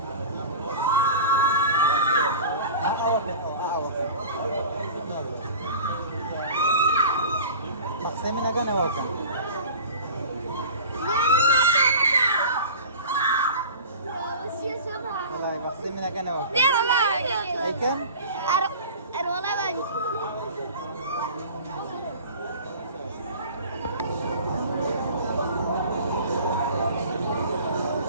बक्से में लगा ना वो क्या बक्से में लगा ना वो लेकिन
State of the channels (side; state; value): both; inverted; correlation -0.39